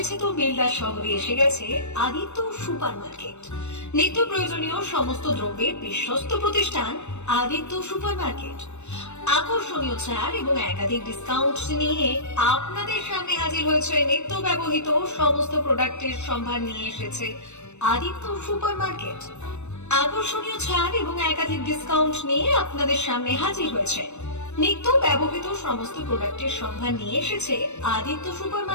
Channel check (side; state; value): right; late; 0.82 ms